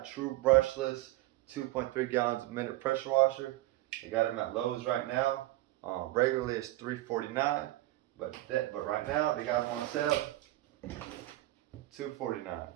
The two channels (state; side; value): quieter; left; 17.2 dB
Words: True Brushless 2.3 gallons a minute pressure washer. I got them at Lowe's right now. Regularly it's $349, but right now they got them on sale $249.